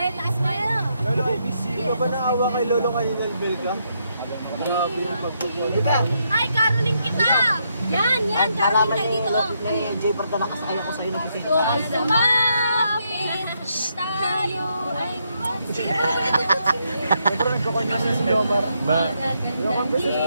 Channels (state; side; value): inverted; both; correlation -0.78